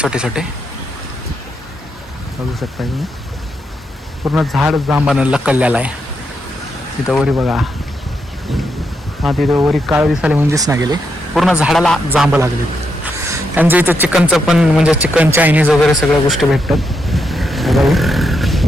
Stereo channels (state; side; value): normal; both; correlation 0.82